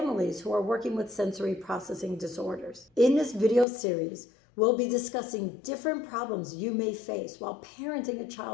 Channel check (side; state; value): right; drops out; at 3.7 s